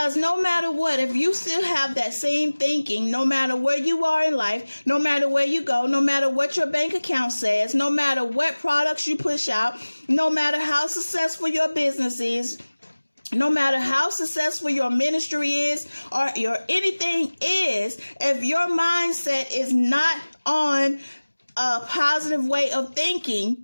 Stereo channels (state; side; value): inverted; both; correlation -1.00